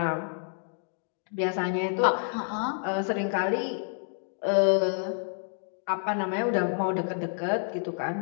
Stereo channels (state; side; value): silent; right; digital silence